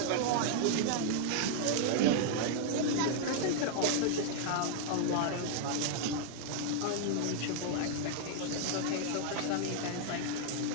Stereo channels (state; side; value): different; both; correlation -0.01